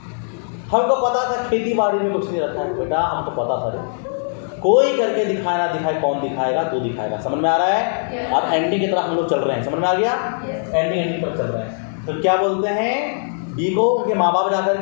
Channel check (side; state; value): right; silent; digital silence